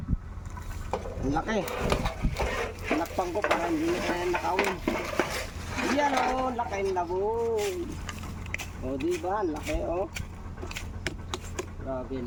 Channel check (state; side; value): identical; both; correlation 1.00